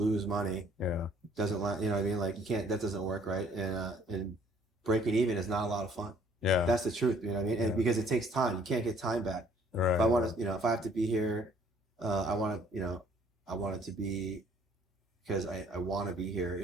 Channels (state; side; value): normal; both; correlation 0.59